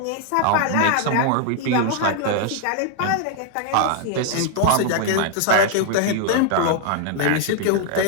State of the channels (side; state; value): both; different; correlation 0.00